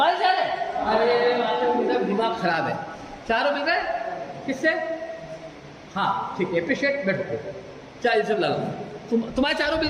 4 है। अरे मेरा दिमाग खराब है, 4 मिल रहे किससे। हाँ ठीक है, अप्रिशिएट, बैठो 4 से ला लो, तुम्हारे 4 मिल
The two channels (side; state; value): both; identical; correlation 1.00